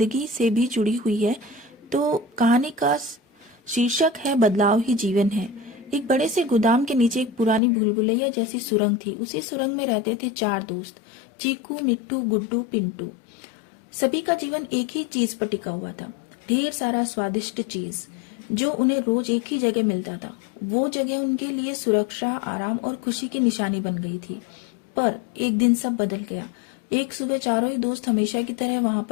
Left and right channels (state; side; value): drops out; right; at 7.6 s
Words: से भी जुड़ी हुई है। तो कहानी का शीर्षक है बदलाव ही जीवन है। एक बड़े से गोदाम के नीचे एक पुरानी भूलभुलैया जैसी सुरंग थी। उसी सुरंग में रहते थे चार दोस्त, चीकू, मिट्टू, गुड्डू, पिंटू। सभी का जीवन एक ही चीज पर टिका हुआ था, ढेर सारा स्वादिष्ट चीज जो उन्हें रोज एक ही जगह मिलता था। वो जगह उनके लिए सुरक्षा, आराम और खुशी की निशानी बन गई थी। पर एक दिन सब बदल गया। एक सुबह चारों ही दोस्त हमेशा की तरह वहां